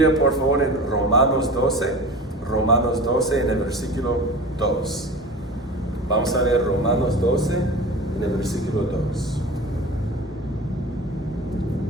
por favor en Romanos 12, en el versículo 2. Vamos a ver Romanos 12, en el versículo 2.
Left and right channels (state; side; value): normal; both; correlation 0.34